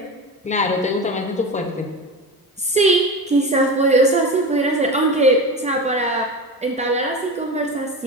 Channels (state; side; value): normal; both; correlation 0.25